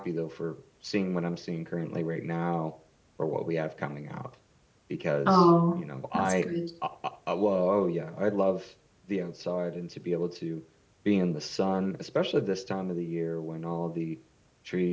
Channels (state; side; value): identical; both; correlation 1.00